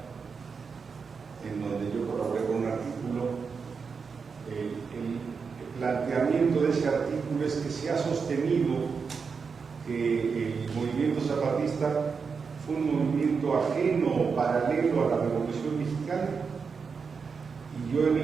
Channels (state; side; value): quieter; left; 5.5 dB